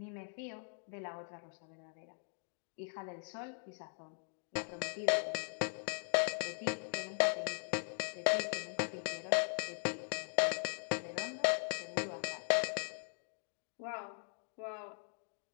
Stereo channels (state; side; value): silent; right; 51 dB below the other